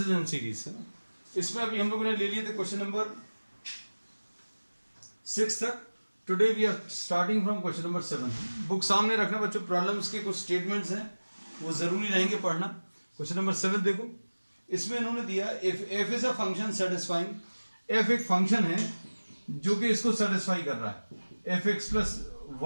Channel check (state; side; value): inverted; both; correlation -1.00